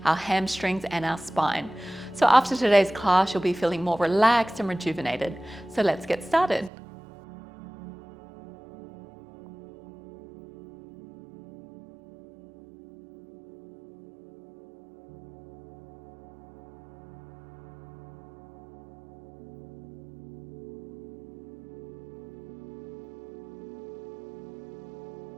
our hamstrings, and our spine. So after today's class, you'll be feeling more relaxed and rejuvenated. So let's get started. So let's make our way down to our mats and we'll meet ourselves in a Savasana. So laying down on your back, getting nice and comfortable as we unwind, begin to release and melt away any stress or tension. So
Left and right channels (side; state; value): left; drops out; at 6.7 s